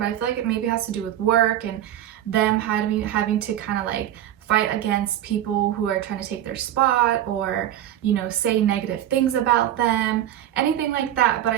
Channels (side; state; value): left; quieter; 11.9 dB